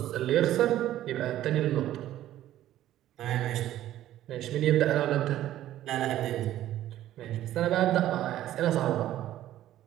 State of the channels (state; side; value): quieter; left; 13.2 dB